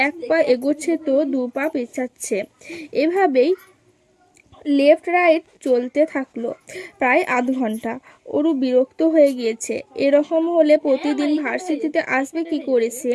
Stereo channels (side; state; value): both; identical; correlation 1.00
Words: এক পা এগোচ্ছে তো দু পা পেছাচ্ছে। এভাবেই লেফট রাইট চলতে থাকলো প্রায় আধ ঘন্টা। ওরু বিরক্ত হয়ে গিয়েছে। এরকম হলে প্রতিদিন ভার্সিটিতে আসবে কি করে সে?